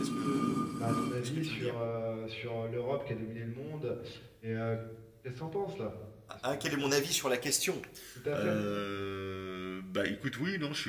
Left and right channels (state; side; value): identical; both; correlation 1.00